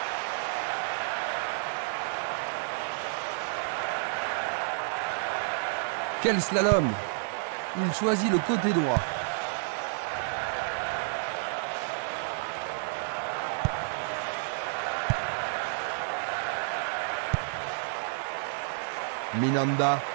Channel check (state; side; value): silent; left; 58 dB below the other